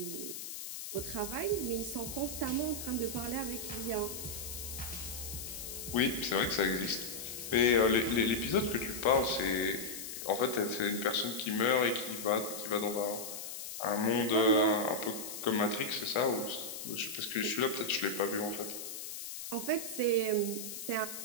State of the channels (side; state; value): left; noise; hiss, 8 dB below the sound